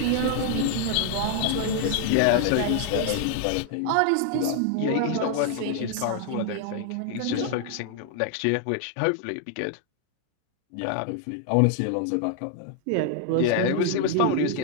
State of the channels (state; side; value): different; both; correlation 0.00